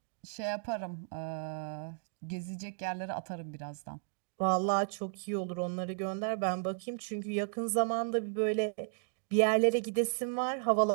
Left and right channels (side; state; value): left; silent; digital silence